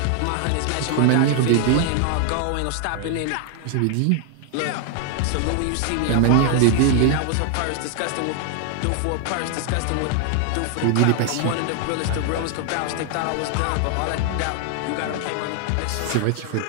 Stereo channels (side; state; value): both; different; correlation 0.00